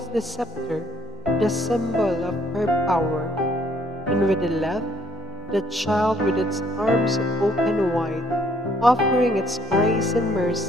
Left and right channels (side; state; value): both; normal; correlation 0.64